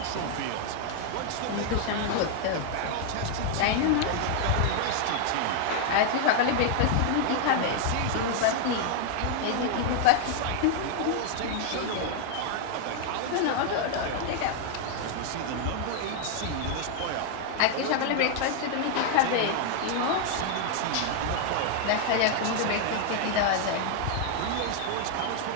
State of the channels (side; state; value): both; different; correlation 0.00